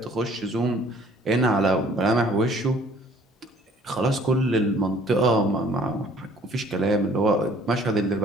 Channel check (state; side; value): normal; both; correlation 0.56